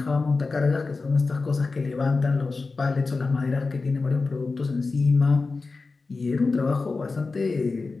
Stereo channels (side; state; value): right; quieter; 4.0 dB